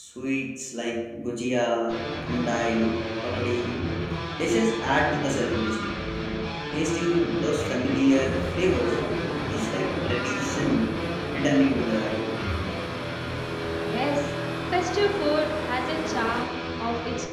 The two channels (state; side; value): identical; both; correlation 1.00